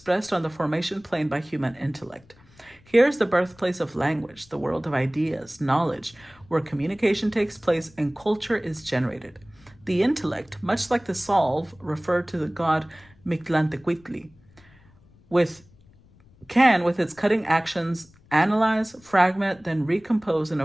on the formation plane by human intellect. Here's the birthplace of language, the world of ideas, knowledge, where communication takes place and culture is generated. The intellect, much like the solve, referred to the god Mictlantecuhtli, with its cutting actions, analyze, fragment, then recompose in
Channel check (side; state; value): left; noise; rumble, 28 dB below the sound